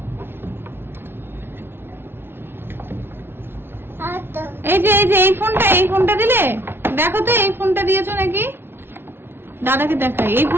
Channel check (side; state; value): left; late; 0.11 ms